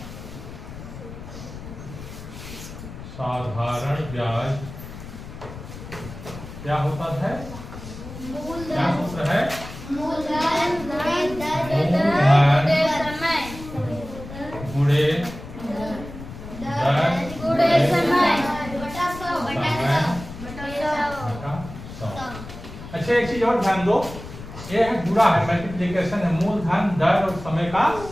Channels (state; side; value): noise; left; rumble, 13 dB below the sound